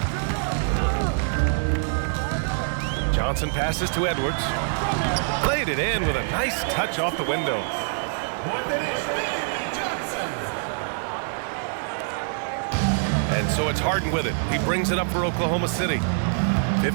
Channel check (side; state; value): left; silent; digital silence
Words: Johnson passes to Edwards. Played it in with a nice touch off the window. Point finish, Johnson. And so it's Harden with it. He brings it up for Oklahoma City.